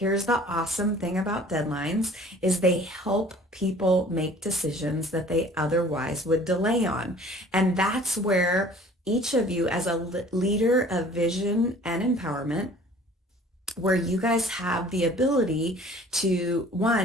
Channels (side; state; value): both; normal; correlation 0.50